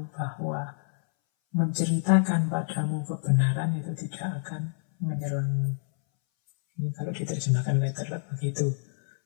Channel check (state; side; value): silent; right; 60 dB below the other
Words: bahwa menceritakan padamu kebenaran itu tidak akan menyerangmu. Ini kalau diterjemahkan letterlek begitu.